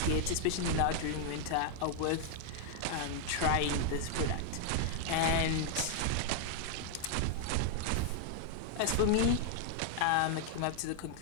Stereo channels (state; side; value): different; both; correlation 0.00